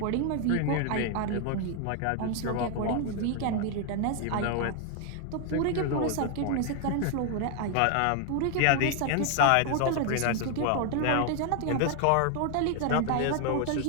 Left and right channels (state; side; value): different; both; correlation 0.00